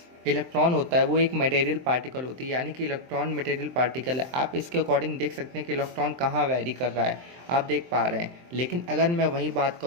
इलेक्ट्रॉन होता है वो एक मटेरियल पार्टिकल होती है, यानी कि इलेक्ट्रॉन मटेरियल पार्टिकल है। आप इसके अकॉर्डिंग देख सकते हैं कि इलेक्ट्रॉन कहाँ वैरी कर रहा है, आप देख पा रहे हैं। लेकिन अगर मैं वही बात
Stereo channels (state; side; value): late; left; 23 ms